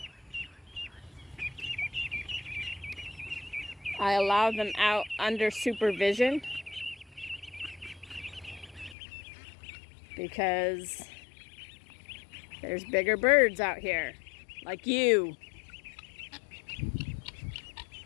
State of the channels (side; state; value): right; drops out; at 9.0 s